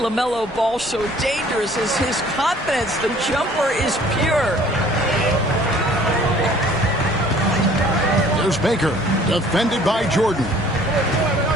Ball so dangerous is his confidence. The jumper is pure. There's Baker, defended by Jordan.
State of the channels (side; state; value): both; normal; correlation 0.54